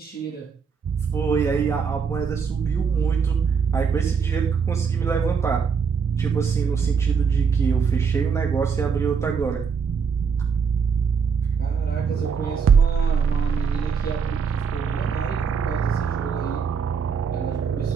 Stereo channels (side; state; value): left; quieter; 6.1 dB